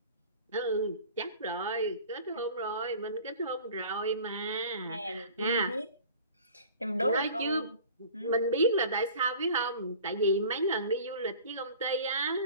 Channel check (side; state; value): both; inverted; correlation -0.43